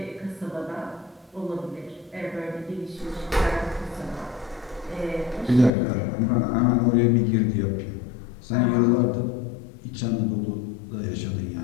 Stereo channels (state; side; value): drops out; right; at 5.7 s